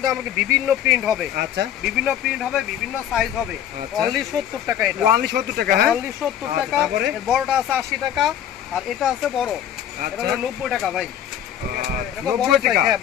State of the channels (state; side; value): quieter; right; 10.3 dB